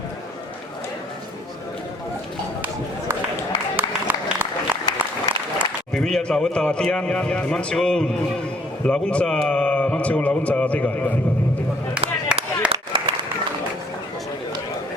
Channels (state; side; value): normal; both; correlation 0.63